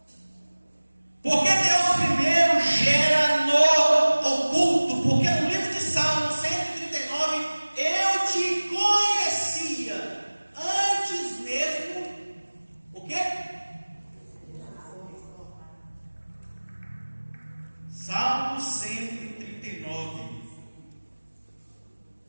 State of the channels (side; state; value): both; inverted; correlation -1.00